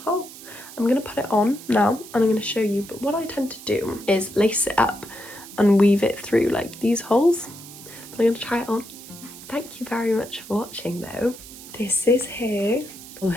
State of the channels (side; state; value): right; noise; hiss, 16 dB below the sound